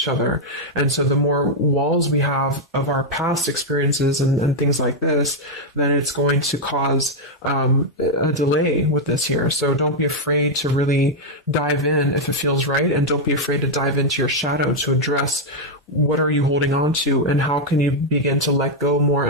other. And so the more walls we have of our past experiences and things like this, then it's going to cause a delay with this here. So don't be afraid to really dive in if it feels right. And don't be afraid to dive into your shadow to address what are you holding on to and how can you begin to let go more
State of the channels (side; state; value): both; normal; correlation 0.00